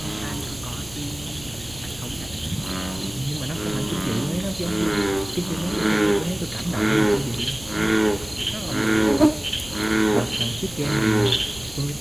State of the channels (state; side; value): noise; right; rumble, 18 dB below the sound